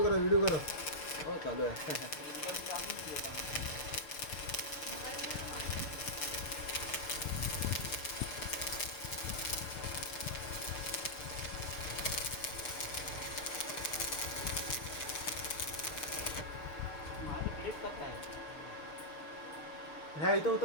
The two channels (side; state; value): right; late; 6.6 ms